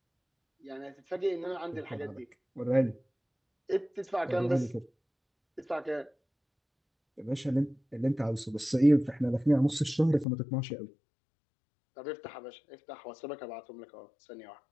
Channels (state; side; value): drops out; right; at 10.2 s